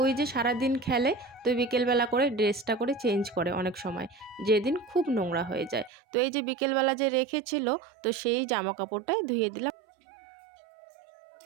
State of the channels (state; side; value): drops out; left; at 5.9 s